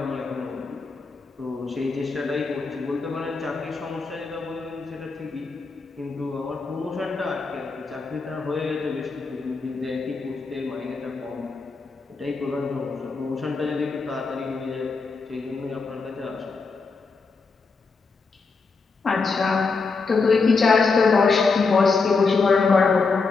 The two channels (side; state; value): right; quieter; 4.4 dB